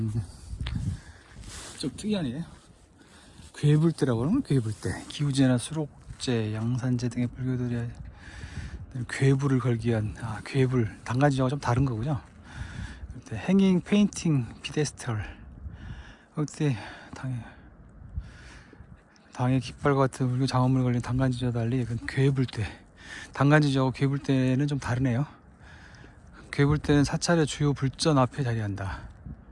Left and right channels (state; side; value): identical; both; correlation 1.00